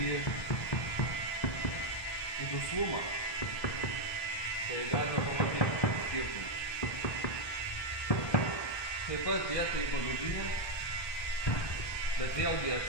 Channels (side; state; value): right; late; 1.2 ms